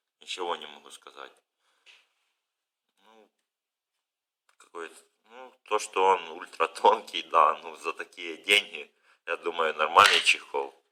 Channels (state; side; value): identical; both; correlation 1.00